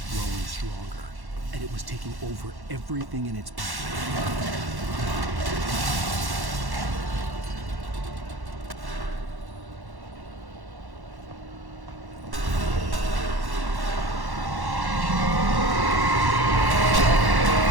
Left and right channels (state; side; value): late; left; 1.1 ms